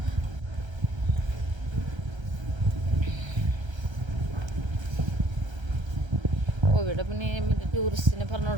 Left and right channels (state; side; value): late; left; 1.3 ms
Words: ഇവിടെ പിന്നെ മറ്റേ ടൂറിസ്റ്റിനെ പറഞ്ഞു